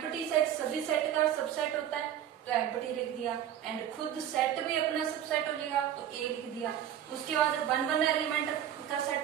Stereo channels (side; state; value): left; quieter; 10.5 dB